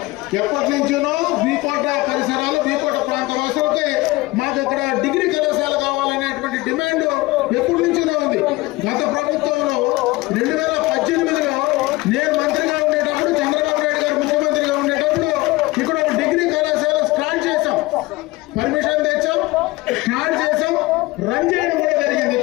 ఎప్పటి నుంచో వీకోట పరిసరాలు, వీకోట ప్రాంత వాసులకి మాకు ఇక్కడ డిగ్రీ కళాశాల కావాలనేటువంటి డిమాండ్ ఎప్పటి నుంచోనే ఉంది. గత ప్రభుత్వంలో 2018లో నేను మంత్రిగా ఉండేటప్పుడు, చంద్రబాబు నాయుడు గారు ముఖ్యమంత్రిగా ఉండేటప్పుడు ఇక్కడ ఒక డిగ్రీ కళాశాల స్టార్ట్ చేశాం, పర్మిషన్ తెచ్చాం, స్టార్ట్ చేశాం, రన్ చేయడం కూడా జరిగింది.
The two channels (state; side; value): quieter; right; 20.9 dB